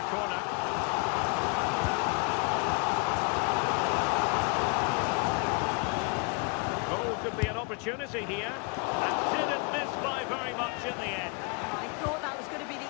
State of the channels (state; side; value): quieter; right; 33.5 dB